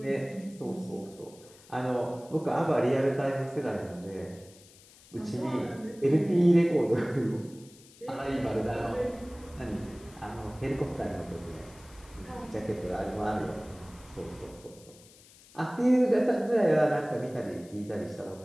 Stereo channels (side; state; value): left; noise; hiss, 24 dB below the sound